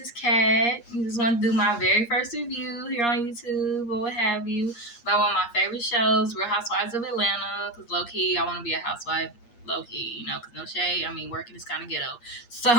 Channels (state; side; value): late; right; 8.5 ms